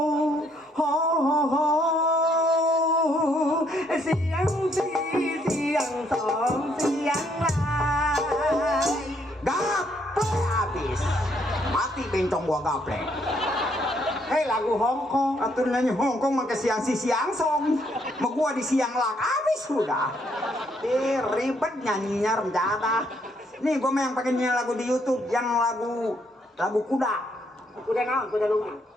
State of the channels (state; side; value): normal; both; correlation 0.71